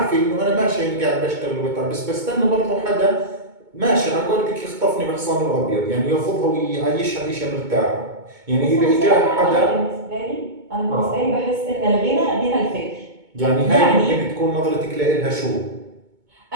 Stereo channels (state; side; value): late; left; 2.2 ms